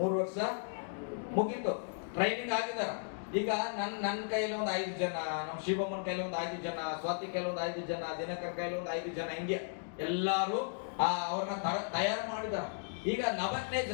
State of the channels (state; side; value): silent; right; digital silence